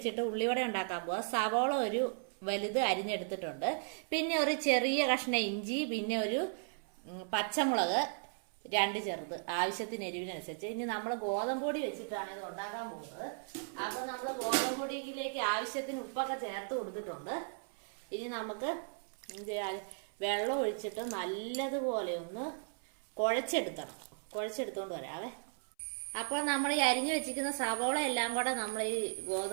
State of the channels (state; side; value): silent; left; 54 dB below the other